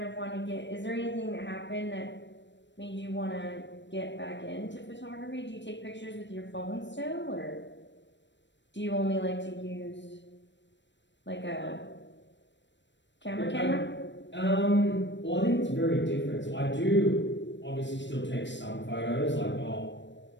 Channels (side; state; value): right; late; 0.53 ms